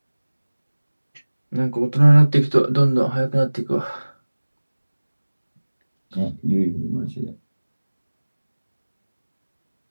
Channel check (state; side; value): inverted; both; correlation -1.00